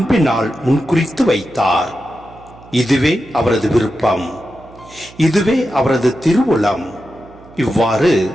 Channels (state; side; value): noise; right; hum, 22 dB below the sound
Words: முன்குறித்து வைத்தார். இதுவே அவரது விருப்பம், இதுவே அவரது திருவுளம். இவ்வாறு